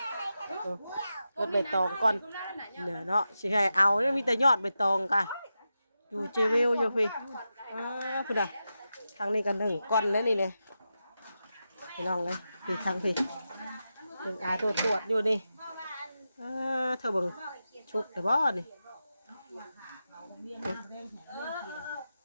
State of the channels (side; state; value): both; inverted; correlation -0.90